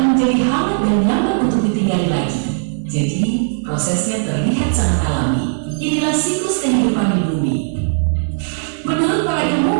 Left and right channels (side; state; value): left; silent; 68 dB below the other